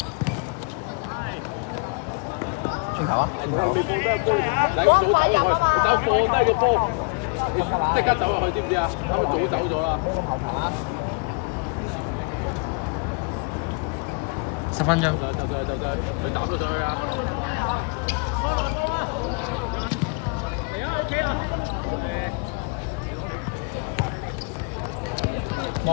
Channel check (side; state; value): right; quieter; 32.6 dB